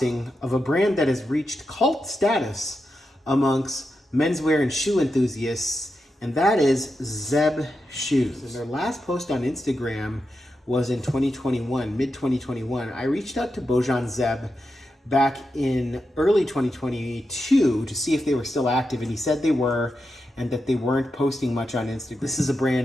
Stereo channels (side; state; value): both; normal; correlation 0.88